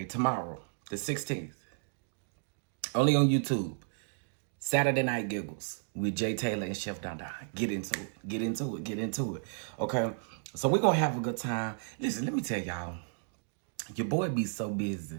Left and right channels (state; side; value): silent; left; digital silence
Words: tomorrow, the 16th, only on YouTube, Saturday Night Giggles with Jay Taylor and Chef DonDons. Get into it. Okay? So we're gonna have a good time. Listen, let me tell y'all, your boy be so